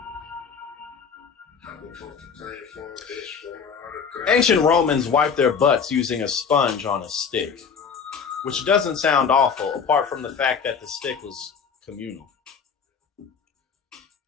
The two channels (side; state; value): right; quieter; 6.3 dB